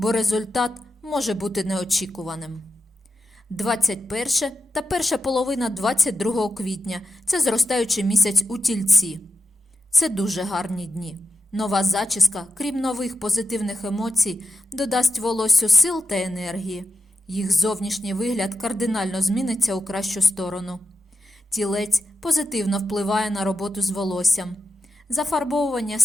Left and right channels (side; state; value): both; normal; correlation 0.89